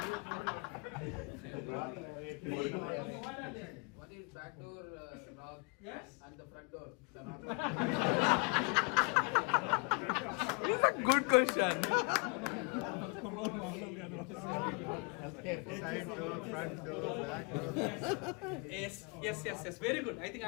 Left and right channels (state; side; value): quieter; right; 33.1 dB